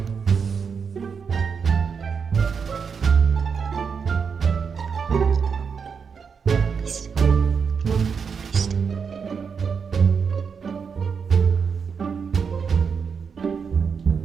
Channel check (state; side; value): quieter; left; 6.1 dB